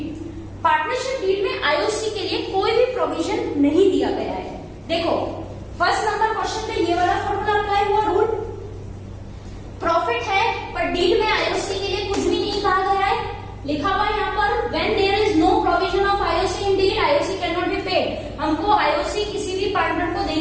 Partnership deed में IOC के लिए कोई भी provision नहीं दिया गया है. देखो फर्स्ट नंबर क्वेश्चन पे ये वाला फॉर्मूला अप्लाई हुआ. रूल प्रॉफिट है पर डीड में आईओसी के लिए कुछ भी नहीं कहा गया है. लिखा हुआ यहाँ पर when there is no provision of IOC in deed IOC can not be paid. हमको आईओसी किसी भी पार्टनर को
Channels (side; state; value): both; identical; correlation 1.00